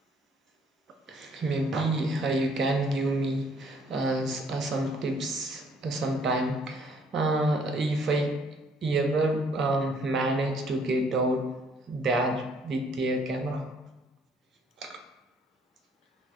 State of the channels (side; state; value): both; normal; correlation 0.63